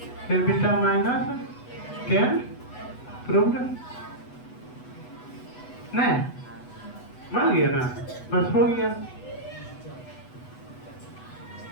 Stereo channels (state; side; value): late; right; 8.1 ms